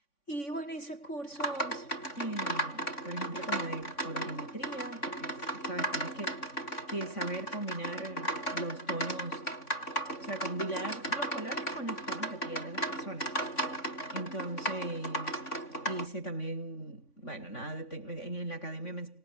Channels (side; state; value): right; late; 3.5 ms